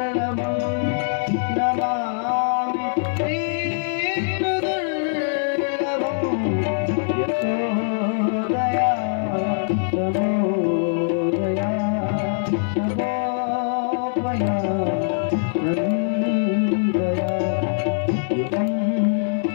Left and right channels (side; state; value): right; silent; digital silence